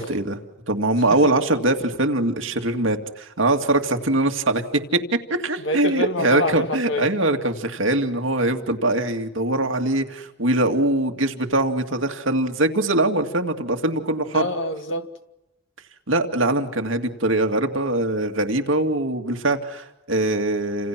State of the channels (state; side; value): normal; both; correlation -0.06